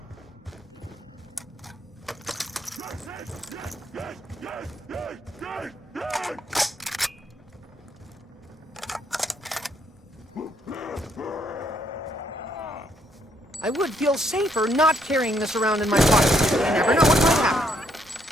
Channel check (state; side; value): normal; both; correlation 0.72